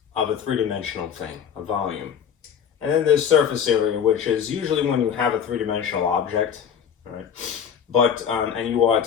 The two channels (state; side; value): quieter; right; 7.9 dB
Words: of a three-dimensional thing, a volume. And then there's surface area, which is usually when you have a three-dimensional object, all right? But, and you are